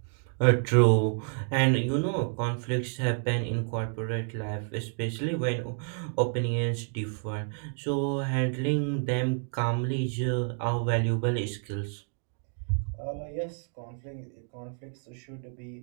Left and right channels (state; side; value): silent; left; 56 dB below the other